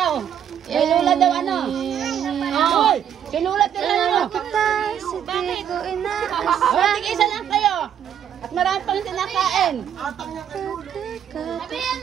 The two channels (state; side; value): quieter; left; 9.3 dB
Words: Ay Lola daw ano? Hoy! Si Lola tira Kita, si Tigo, inaasa. Oh, tig-isa lang kayo. At marami pang sinakain.